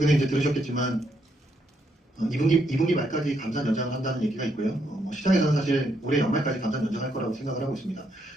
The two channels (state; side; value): normal; both; correlation 0.76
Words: 이제 들으셨겠지만 2분기 말까지 감산 연장을 한다는 얘기가 있고요. 시장에서는 사실 올해 연말까지 감산 연장할 거라고 생각을 하고 있습니다.